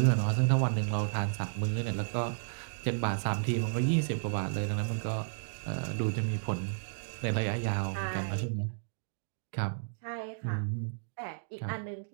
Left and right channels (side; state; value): left; silent; digital silence